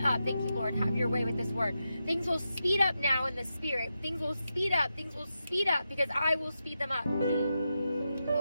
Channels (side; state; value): both; inverted; correlation -0.88